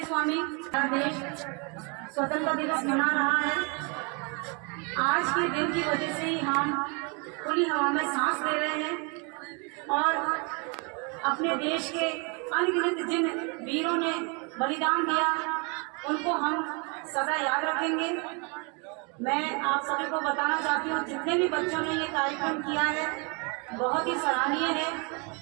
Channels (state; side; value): quieter; left; 33.3 dB